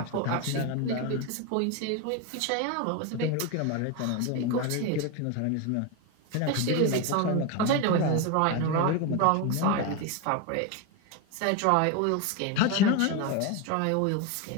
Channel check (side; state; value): both; different; correlation 0.02